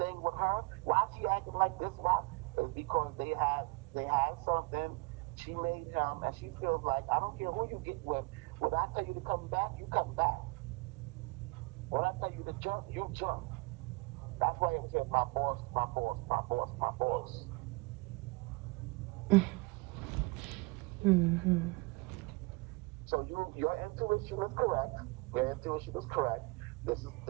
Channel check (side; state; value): left; quieter; 26.4 dB